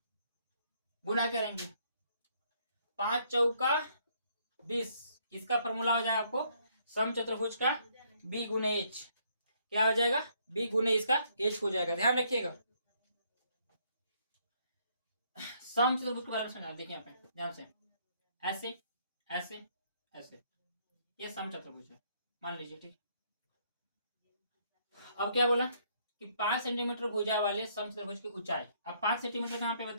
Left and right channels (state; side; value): inverted; both; correlation -0.68